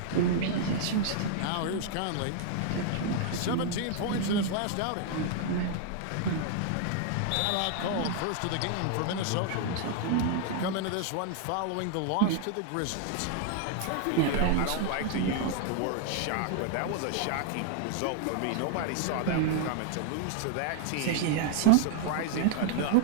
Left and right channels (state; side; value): different; both; correlation 0.00